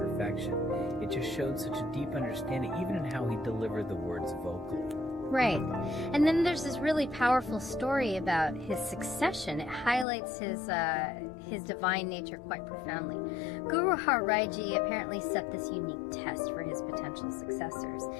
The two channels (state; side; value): drops out; right; at 10.1 s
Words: it just showed such a deep understanding, even in how he delivered the words vocally. Right. And then there's this really powerful story about his succession. It highlights his divine nature quite profoundly. Guru Harbobind Ji apparently set this unique test for his potential successors.